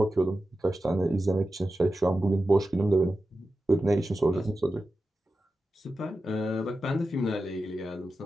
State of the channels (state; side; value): normal; both; correlation 0.92